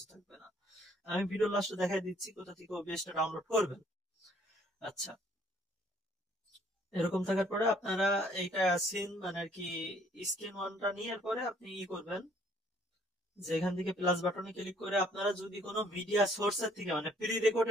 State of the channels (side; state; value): both; normal; correlation 0.61